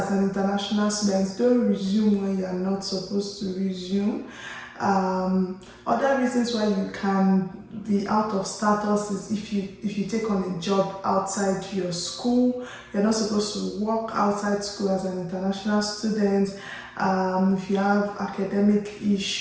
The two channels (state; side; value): identical; both; correlation 1.00